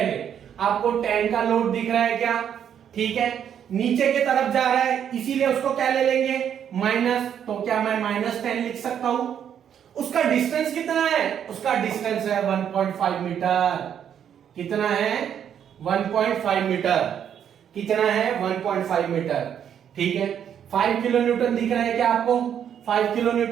आपको 10 का लोड दिख रहा है क्या? ठीक है, नीचे की तरफ जा रहा है, इसीलिए उसको क्या ले लेंगे? माइनस। तो क्या मैं -10 लिख सकता हूं? उसका डिस्टेंस कितना है? उसका डिस्टेंस है 1.5 मीटर। कितना है? 1.5 मीटर। कितना है? 1.5 मीटर। ठीक है, 5 किलो न्यूटन दिख रहा है क्या आपको? 5 किलो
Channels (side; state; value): left; quieter; 8.9 dB